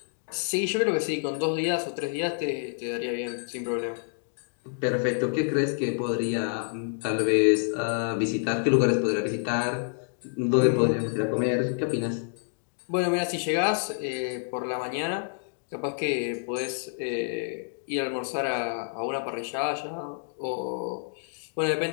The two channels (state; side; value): silent; right; digital silence